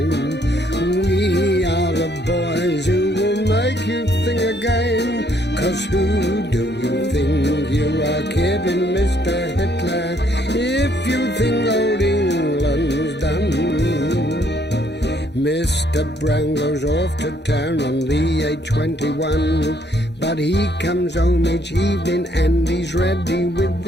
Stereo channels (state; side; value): normal; both; correlation 0.68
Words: We are the boys who will make you think again. 'Cause who do you think you are kidding, Mr. Hitler, if you think old England's done? Mr. Brown goes off to town on the A21, but he comes home each evening and he's ready with